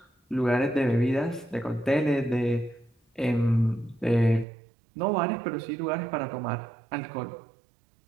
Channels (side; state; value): left; drops out; at 4.5 s